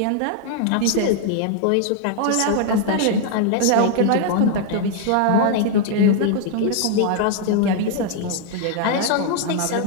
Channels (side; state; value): both; different; correlation 0.00